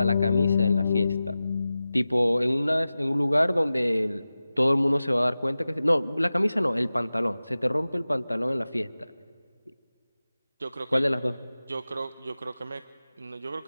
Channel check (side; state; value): both; inverted; correlation -0.95